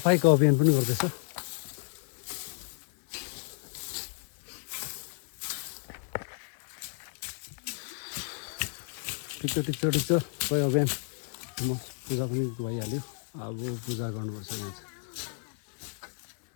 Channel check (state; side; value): silent; right; 57 dB below the other